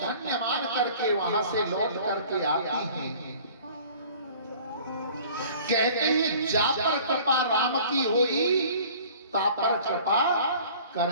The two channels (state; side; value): inverted; both; correlation -0.48